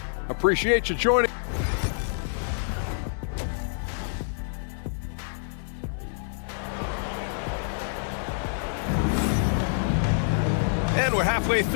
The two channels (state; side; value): silent; right; digital silence